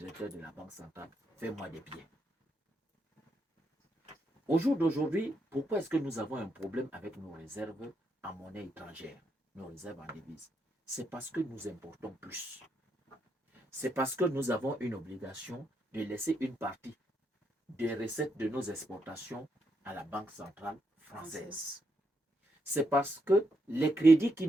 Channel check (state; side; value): normal; both; correlation 0.79